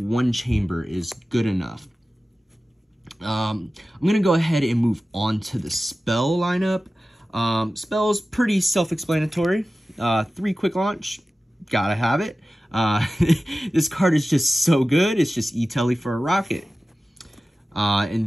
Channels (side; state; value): both; normal; correlation 0.95